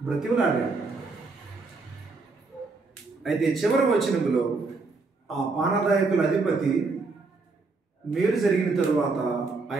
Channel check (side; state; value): left; quieter; 3.9 dB